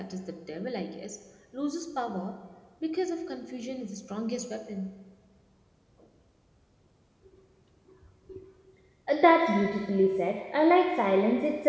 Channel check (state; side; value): identical; both; correlation 1.00